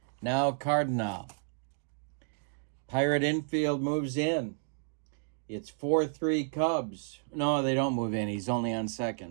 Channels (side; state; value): left; silent; digital silence